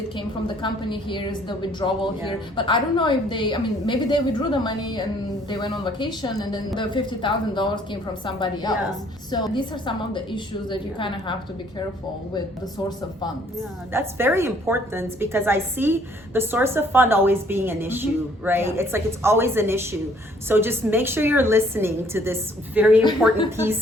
came from the company, here is the withdrawal here, but I don't know if maybe they withdrew the money and they went on vacation, and then the $50,000 came from somebody else. So these are some of the issues that you kind of have to be careful with, the source of funds. That's very important, because I see the source of fund always being an issue, right? It's like it's always an issue. So just make sure you're listening to this very important piece,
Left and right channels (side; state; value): both; normal; correlation 0.61